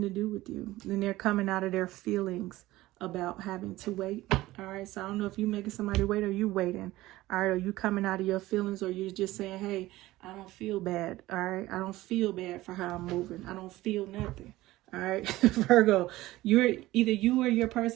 to do with you. And they're coming out of their feelings about having to wait. All right, so I don't know if you making somebody wait or you waiting. All right, are you coming out of your feelings, or you're just saying, hey, I don't feel bad. All right, I don't feel bad for how I'm moving. I don't feel nothing. All right, Virgo, either you or your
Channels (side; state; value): left; quieter; 17.4 dB